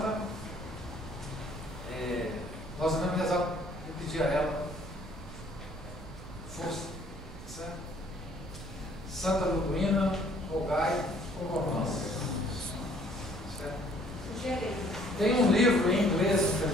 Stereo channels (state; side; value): noise; right; rumble, 13 dB below the sound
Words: nós devemos rezar e pedir a ela força, certo? Santa Liduína, rogai por nós. Certo? Tem um livro em inglês,